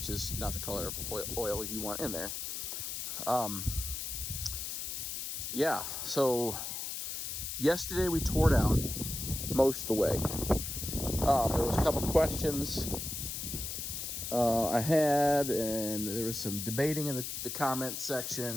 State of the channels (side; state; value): left; noise; hiss, 5 dB below the sound